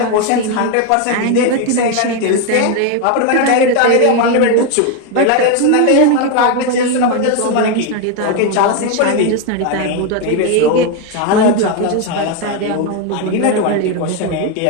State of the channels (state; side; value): different; both; correlation 0.01